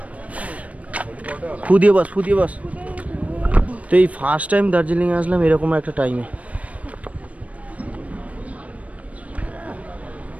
ফুদিয়ে বাস। তো এই ফার্স্ট টাইম দার্জিলিংয়ে আসলাম এরকম একটা টাইমে।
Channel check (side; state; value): left; late; 0.067 ms